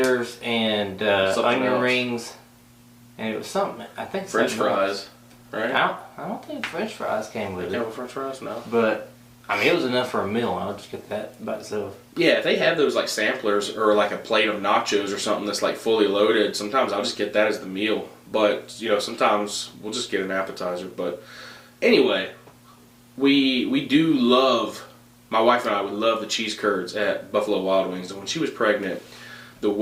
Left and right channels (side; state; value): both; identical; correlation 1.00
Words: and onion rings, and it was something. I think French fries. Right? I don't think French fries came with it. Came with French fries? No. But, I mean, it was enough for a meal. I'll just get that by itself. Yeah, if they have those, like, samplers or, like, a plate of nachos or something that's, like, fully loaded, sometimes I'll just get that as the meal. But, sometimes we'll just get an appetizer. But, anyway, we do love, my wife and I would love the cheese curds at Buffalo Wild Wings. And when she was pregnant, the